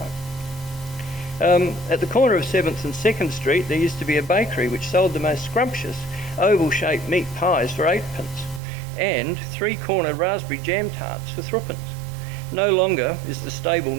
At the corner of 7th and 2nd Street, there used to be a bakery which sold the most scrumptious oval-shaped meat pies for 8p and 3-corner raspberry jam tarts for 3p. No longer is the stable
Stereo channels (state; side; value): drops out; left; at 8.6 s